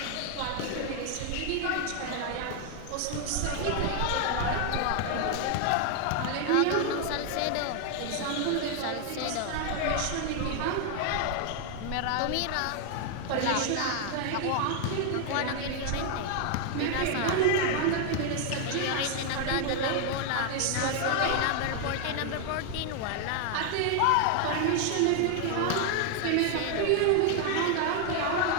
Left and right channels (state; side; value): different; both; correlation 0.00